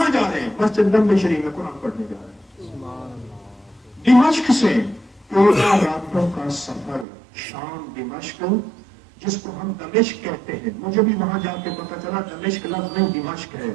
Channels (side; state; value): left; drops out; at 7.1 s